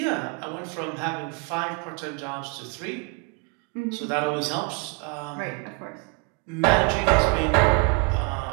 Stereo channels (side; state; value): left; quieter; 32.8 dB